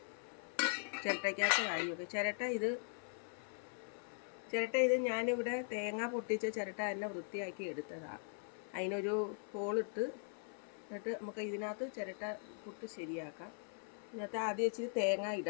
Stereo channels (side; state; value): right; silent; 51 dB below the other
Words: ചിരട്ടയ്ക്കകത്ത് വാരി വെക്കും. ചിരട്ട ഇത് ഞാനിവിടെ തേങ്ങ പൊട്ടിച്ച ചിരട്ട തന്നെ വൃത്തിയാക്കി എടുത്തതാണ്. അതിനൊരു ഹോളിട്ട് എന്നിട്ട് നമുക്ക് ഇതിനകത്ത് ചിരട്ട പുട്ട് ശരിയാക്കാം. ഇതിനകത്ത് ആദ്യം ഇച്ചിരി തേങ്ങ